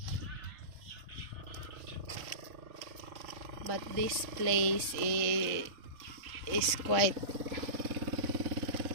this place is quite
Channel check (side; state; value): left; late; 3.5 ms